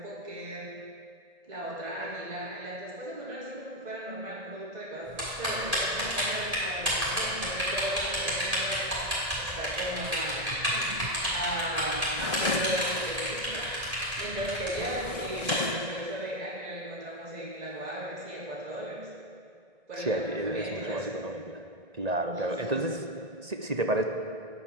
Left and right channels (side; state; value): left; late; 1.8 ms